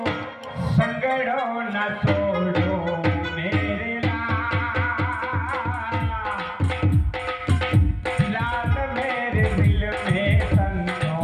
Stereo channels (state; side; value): identical; both; correlation 1.00